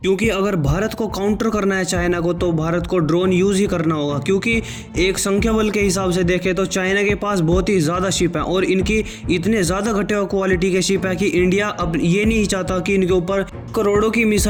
क्योंकि अगर भारत को काउंटर करना है चाइना को तो भारत को ड्रोन यूज ही करना होगा। क्योंकि एक संख्या बल के हिसाब से देखें तो चाइना के पास बहुत ही ज्यादा शिप है और इनकी इतने ज्यादा घटे हुए क्वालिटी के शिप है कि इंडिया अब ये नहीं चाहता कि इनके ऊपर करोड़ों की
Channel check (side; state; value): both; identical; correlation 1.00